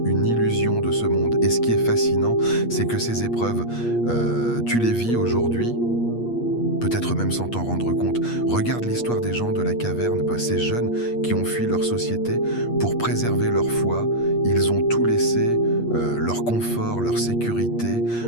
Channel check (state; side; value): late; right; 8.5 ms